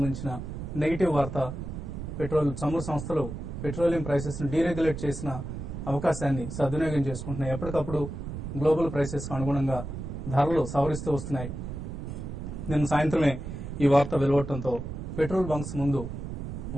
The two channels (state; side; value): noise; right; rumble, 7 dB below the sound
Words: నెగిటివ్ వార్త. పెట్రోల్ చమురు సంస్థలు పెట్రోలియం ప్రైసెస్ ను డీరెగ్యులేట్ చేసిన అవకాశాన్ని సద్వినియోగం చేసుకుంటున్నాయి. ఎప్పటికప్పుడు గ్లోబల్ ప్రైసెస్ కు అనుగుణంగా ధరలు సవరిస్తూ వస్తున్నాయి. నిన్న సాయంత్రమే ఈ వార్త వెలువడటంతో పెట్రోల్ బంక్స్ ముందు